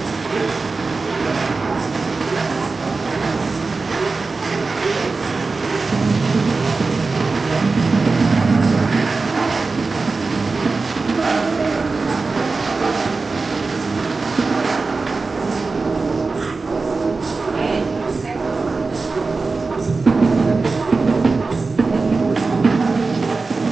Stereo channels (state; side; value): quieter; left; 4.0 dB